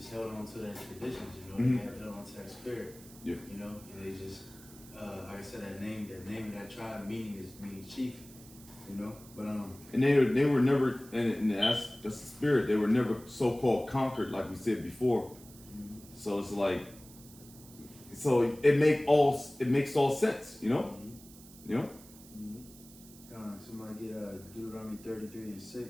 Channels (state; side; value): noise; right; hiss, 21 dB below the sound